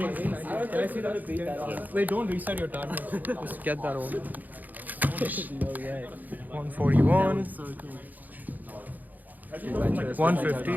Can I see that? Wait, don't reset your timer. Just get that over. 141.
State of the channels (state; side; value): late; left; 0.083 ms